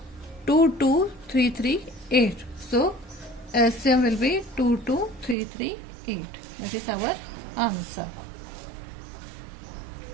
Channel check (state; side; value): drops out; left; at 5.4 s